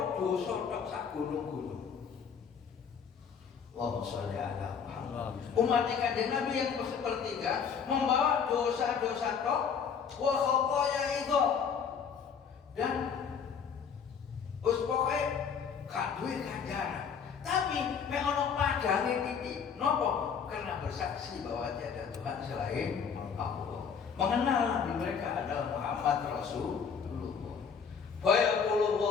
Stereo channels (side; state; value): right; quieter; 6.7 dB